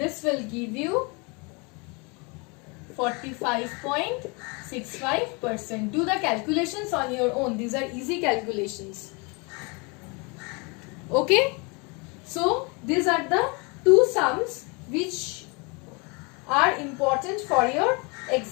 will give you 45.65%. Do the calculations on your own. These are easy calculations. Okay, so these are the two sums which are important for your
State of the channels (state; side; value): quieter; right; 30.3 dB